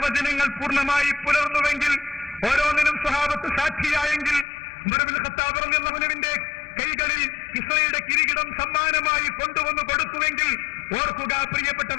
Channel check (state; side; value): drops out; right; at 4.5 s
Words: പൂർണ്ണമായി പുലർന്നുവെങ്കിൽ, ഓരോന്നിനും സ്വഹാബത്ത് സാക്ഷിയായെങ്കിൽ, ഉമർ ഇബ്നുൽ ഖത്താബ് റളിയല്ലാഹു അൻഹുവിന്റെ കൈകളിൽ കിസ്റയുടെ കിരീടം സമ്മാനമായി കൊണ്ടുവന്നു കൊടുത്തുവെങ്കിൽ, ഓർക്കുക